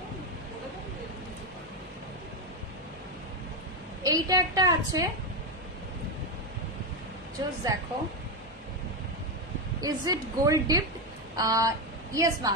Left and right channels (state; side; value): normal; both; correlation 0.09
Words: এইটা একটা আছে, জাস্ট দেখো, is it gold dip? Yes